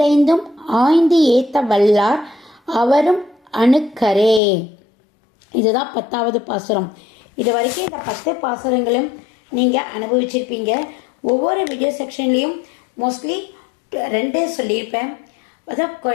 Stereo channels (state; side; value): drops out; right; at 4.4 s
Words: ஆய்ந்து ஏத்த வல்லார் அவரும் அணுக்கரே. இதுதான் 10வது பாசுரம். இது வரைக்கும் இந்த 10 பாசுரங்களும் நீங்கள் அனுபவிச்சிருப்பீங்க. ஒவ்வொரு வீடியோ செக்ஷன்லேயும் மோஸ்ட்லி 2 சொல்லியிருப்பேன். அதான்